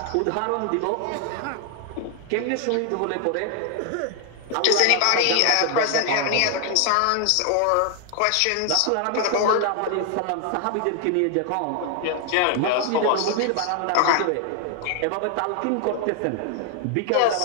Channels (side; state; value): both; different; correlation 0.00